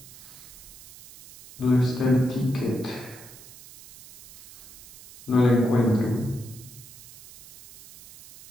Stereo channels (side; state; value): right; noise; hiss, 19 dB below the sound